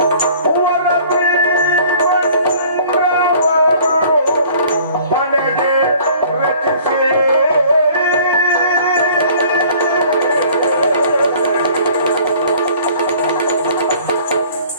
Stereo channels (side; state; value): both; inverted; correlation -0.52